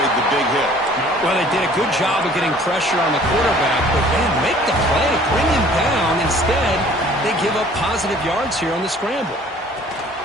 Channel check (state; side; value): normal; both; correlation 0.53